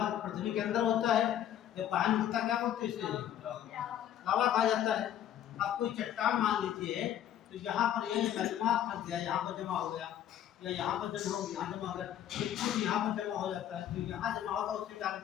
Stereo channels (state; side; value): quieter; right; 10.8 dB